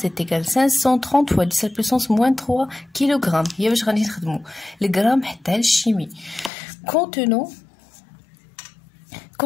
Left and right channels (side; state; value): right; drops out; at 6.5 s